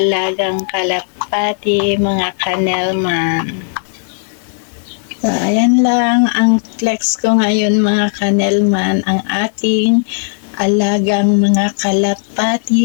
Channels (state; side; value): silent; right; digital silence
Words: kalapati, mga kanelman. Ayan lang ang flex ko ngayon mga kanelman, ang aking alagang mga